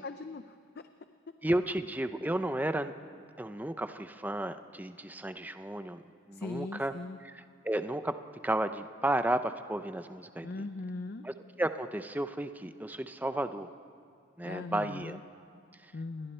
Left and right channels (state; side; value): normal; both; correlation 0.82